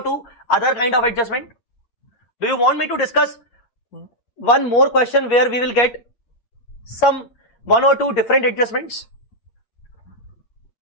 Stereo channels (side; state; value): right; late; 8.6 ms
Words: two other kind of adjustment. Do you want me to discuss one more question where we will get some one or two different adjustments?